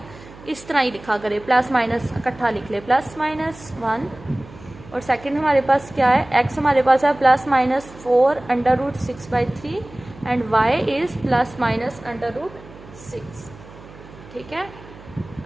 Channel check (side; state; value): right; noise; hum, 19 dB below the sound